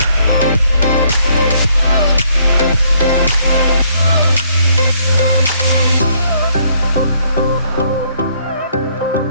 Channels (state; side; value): inverted; both; correlation -0.67